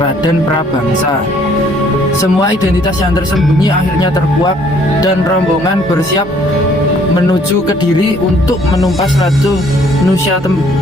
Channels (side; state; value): both; normal; correlation 0.62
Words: Prabangsa. Semua identitas yang tersembunyi akhirnya terkuak dan rombongan bersiap menuju Kediri untuk menumpas Ratu